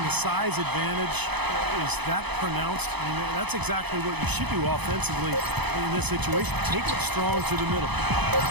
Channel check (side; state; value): left; late; 0.99 ms